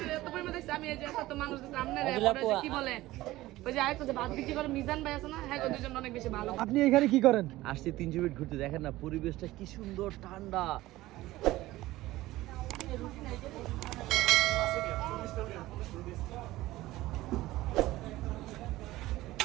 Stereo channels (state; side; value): quieter; left; 17.2 dB